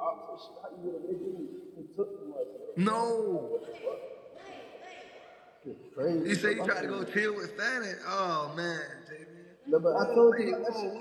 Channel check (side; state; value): both; identical; correlation 1.00